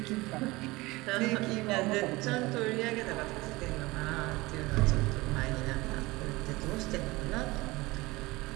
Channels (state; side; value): quieter; left; 21.5 dB